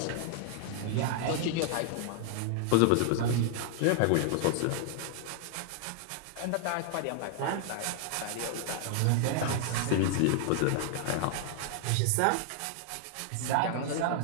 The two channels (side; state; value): both; different; correlation 0.00